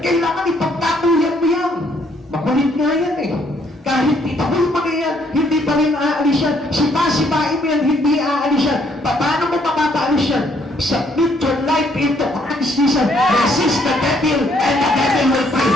Kailangan ipagtatuyan mo yan. Makulit nga yan eh. Kahit itaboy mo na yan, hindi pa rin aalis yan. Sipa-sipain mo yan, hindi aalis yan. Paano mo mapapaalis yan? Submit your life into Christ Jesus. Resist the devil and the devil will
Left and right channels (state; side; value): normal; both; correlation 0.68